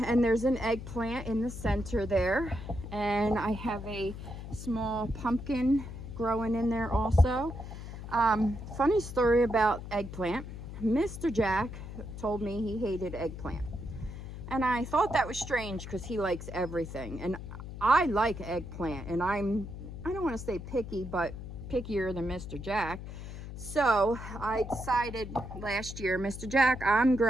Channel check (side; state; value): left; noise; hum, 10 dB below the sound